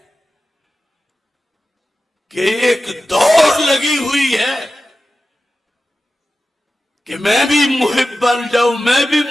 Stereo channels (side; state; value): both; normal; correlation 0.93